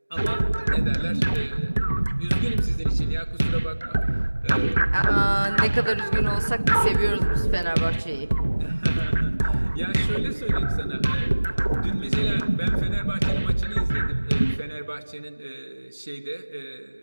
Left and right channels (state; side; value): inverted; both; correlation -1.00